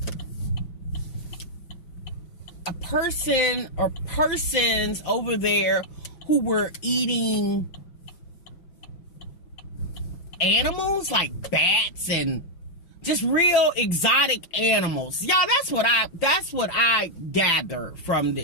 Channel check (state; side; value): late; right; 5.8 ms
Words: a person or persons over there who were eating animals like bats and just real exotic animals. Y'all, that's what I gather from